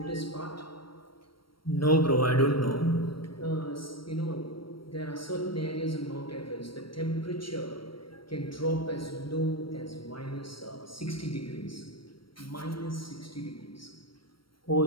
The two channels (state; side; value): late; right; 0.74 ms